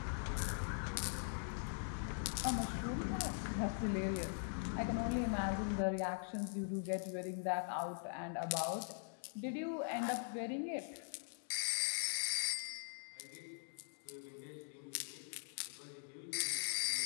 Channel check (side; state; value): right; silent; digital silence